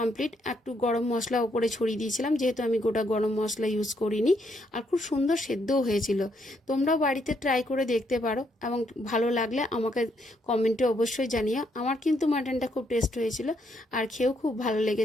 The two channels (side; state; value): both; normal; correlation 0.74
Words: একটু গরম মশলা ওপরে ছড়িয়ে দিয়েছিলাম, যেহেতু আমি গোটা গরম মশলা ইউজ করিনি। আর খুব সুন্দর সেদ্ধও হয়েছিল। তোমরাও বাড়িতে ট্রাই করে দেখতে পারো এবং ভালো লাগলে আমাকে কমেন্টে অবশ্যই জানিও। আমার কিন্তু মাটনটা খুব টেস্ট হয়েছিল আর খেয়েও খুব ভালো